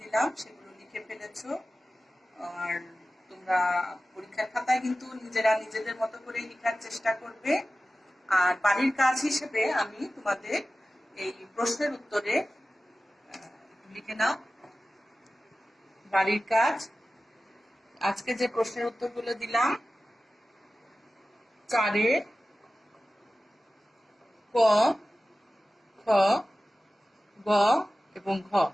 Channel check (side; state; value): both; normal; correlation 0.95